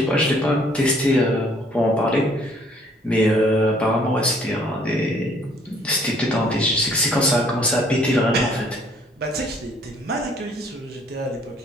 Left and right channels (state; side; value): normal; both; correlation 0.61